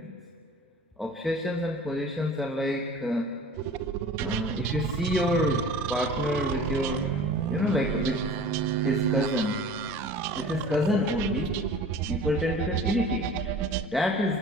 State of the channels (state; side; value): normal; both; correlation 0.43